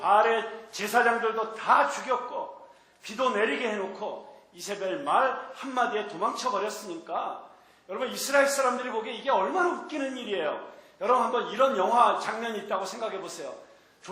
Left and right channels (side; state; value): both; identical; correlation 1.00